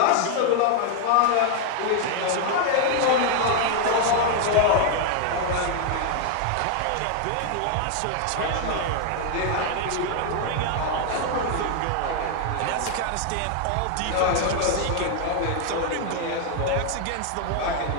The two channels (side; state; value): both; different; correlation 0.00